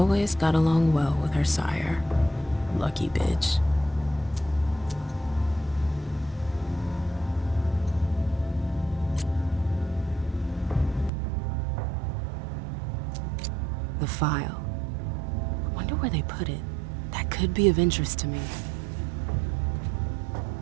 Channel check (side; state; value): left; drops out; at 11.1 s